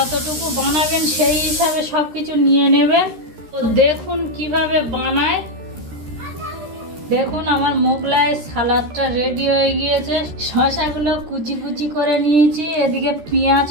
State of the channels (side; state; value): left; late; 13 ms